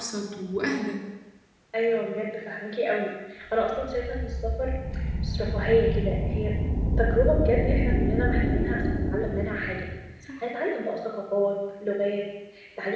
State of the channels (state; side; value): identical; both; correlation 1.00